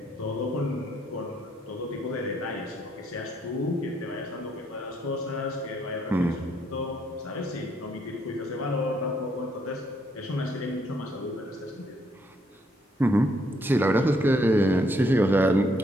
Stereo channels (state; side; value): normal; both; correlation 0.71